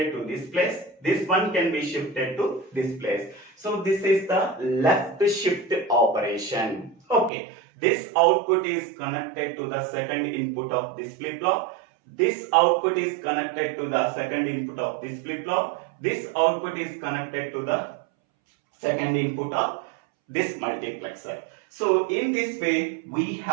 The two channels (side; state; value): left; drops out; at 7.3 s